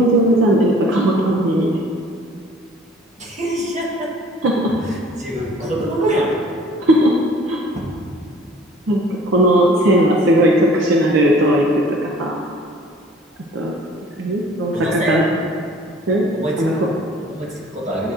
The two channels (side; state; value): both; normal; correlation 0.51